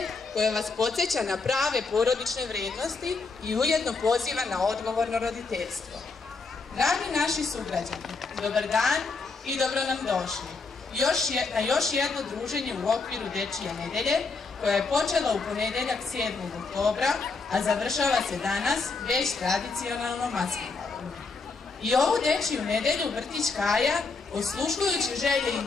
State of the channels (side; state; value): right; quieter; 4.3 dB